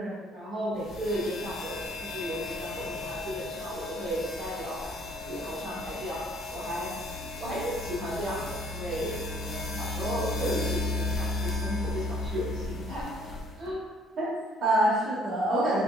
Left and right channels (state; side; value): normal; both; correlation 0.59